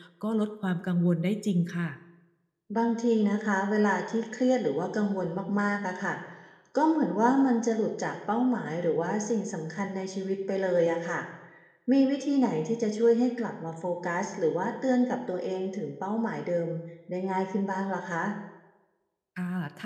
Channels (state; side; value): identical; both; correlation 1.00